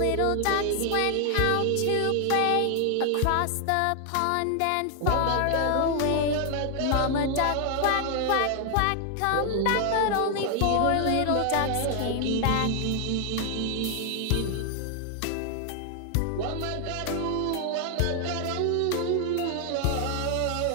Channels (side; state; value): both; different; correlation 0.00